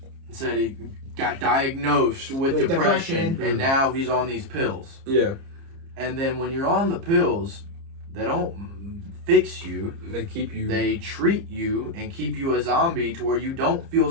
Said he got diagnosed with depression, and now he's on these pills. Yeah. And then when you're on the pills, they don't fix you. They keep you. They treat you and keep you a zombie to where you don't feel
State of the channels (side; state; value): left; late; 30 ms